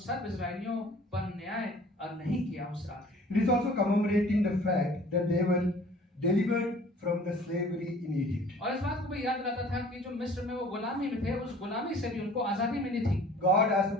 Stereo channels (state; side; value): normal; both; correlation 0.50